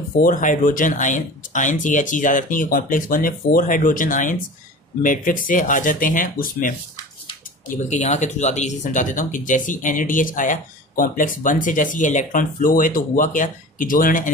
4 हाइड्रोजन आयंस, यह चीज याद रखनी है कि कॉम्प्लेक्स 1 में 4 हाइड्रोजन आयंस मैट्रिक्स से आ जाते हैं उसमें। ये बल्कि यहाँ के थ्रू ज्यादा इजी समझा देता हूँ कि जैसी NADH आया कॉम्प्लेक्स 1 से, जैसी ये इलेक्ट्रॉन फ्लो है तो हुआ क्या कि जो उन्होंने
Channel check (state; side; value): normal; both; correlation 0.36